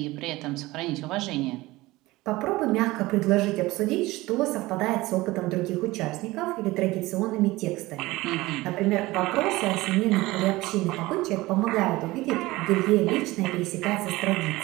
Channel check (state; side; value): quieter; left; 19.6 dB